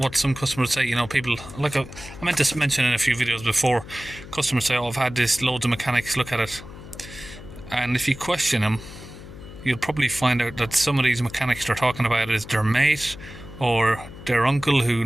some customers say. You know, people, like I meant to mention in a few videos before, customers say, oh, I've had this, loads of mechanics look at it, and if you question them, you'll probably find out that some of these mechanics they're talking about is their mate or their uncle who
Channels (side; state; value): left; noise; hum, 15 dB below the sound